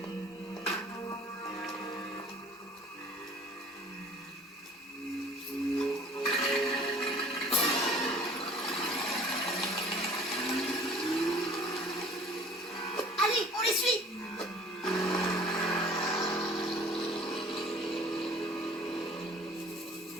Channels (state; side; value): normal; both; correlation 0.50